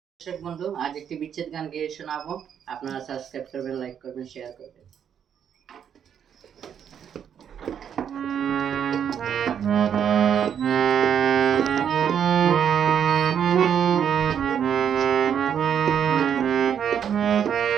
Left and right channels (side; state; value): left; quieter; 8.5 dB